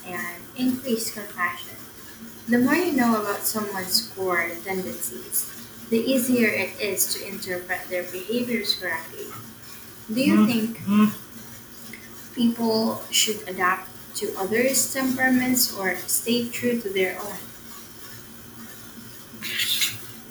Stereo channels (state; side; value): identical; both; correlation 1.00